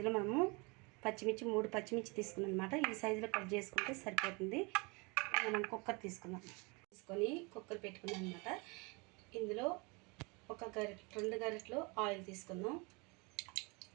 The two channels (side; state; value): left; quieter; 28.9 dB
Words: మనము పచ్చిమిర్చి 3 పచ్చిమిర్చి తీసుకున్నాను అనమాట. ఈ సైజులో కట్ చేసుకుంటే సరిపోతుంది. మనం కుక్కర్ తీసుకున్నాం, తీసుకొని కుక్కర్ పెట్టుకున్నాం అనమాట. ఇందులో 2 గరిటెలు ఆయిల్ తీసుకుందాం.